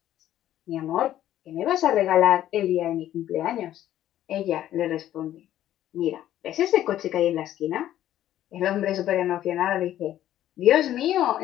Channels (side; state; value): right; quieter; 12.4 dB